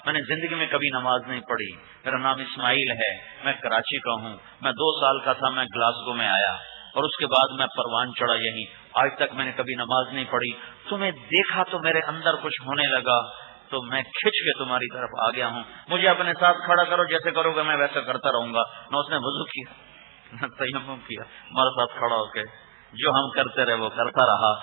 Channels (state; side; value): quieter; left; 36.1 dB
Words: میں نے زندگی میں کبھی نماز نہیں پڑھی. میرا نام اسماعیل ہے، میں کراچی کا ہوں. میں 2 سال کا تھا، میں گلاسگو میں آیا اور اس کے بعد میں پروان چڑھا یہیں. آج تک میں نے کبھی نماز نہیں پڑھی. تمہیں دیکھا تو میرے اندر کچھ ہونے لگا، تو میں کھچ کے تمہاری طرف آ گیا ہوں. مجھے اپنے ساتھ کھڑا کرو، جیسے کرو گے میں ویسا کرتا رہوں گا. نہ اس نے وضو کیا نہ تیمم کیا، ہمارے ساتھ کھڑا ہو کے جو ہم کرتے رہے وہ کرتا رہا.